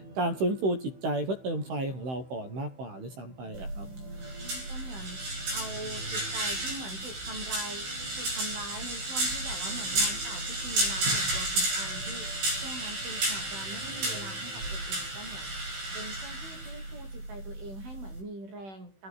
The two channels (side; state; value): left; late; 16 ms